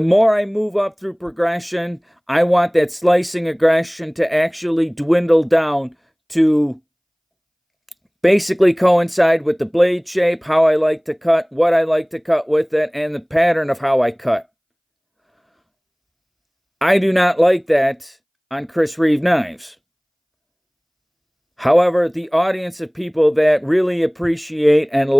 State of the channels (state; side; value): identical; both; correlation 1.00